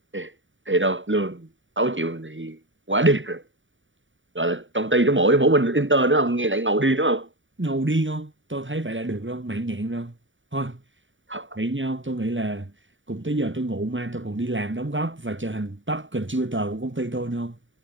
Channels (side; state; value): left; late; 0.56 ms